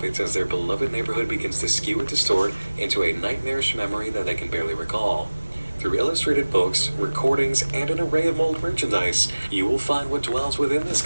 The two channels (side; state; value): both; inverted; correlation -1.00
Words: as their beloved neighborhood begins to skew and distort into a nightmarish memory that they can barely recall. Through illustrated books, recordings, and an array of mold merchandise, you will find what dwells within this